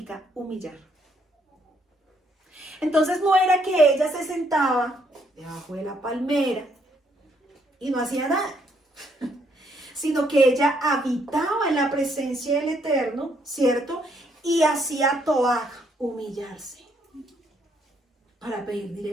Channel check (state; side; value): normal; both; correlation 0.71